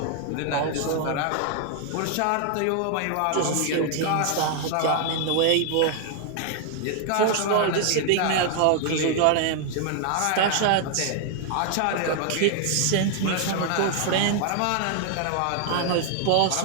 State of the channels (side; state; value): both; different; correlation 0.00